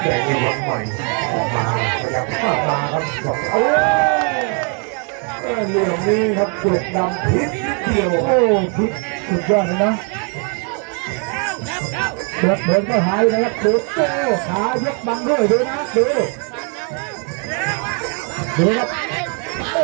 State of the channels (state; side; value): quieter; left; 38.6 dB